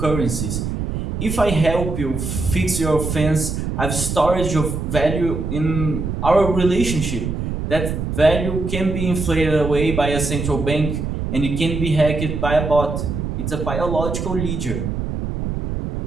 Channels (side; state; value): right; noise; rumble, 3 dB below the sound